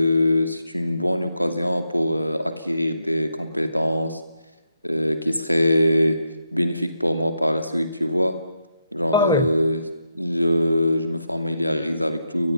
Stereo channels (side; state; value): both; inverted; correlation -0.83